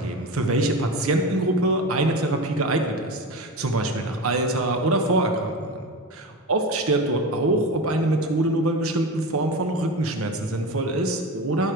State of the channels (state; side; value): normal; both; correlation 0.26